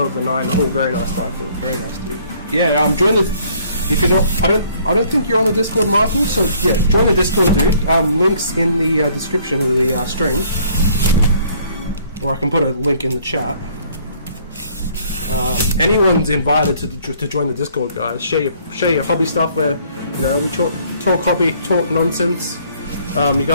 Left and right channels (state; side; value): inverted; both; correlation -0.61